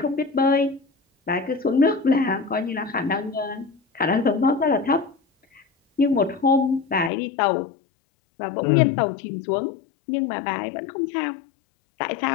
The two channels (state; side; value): drops out; right; at 7.1 s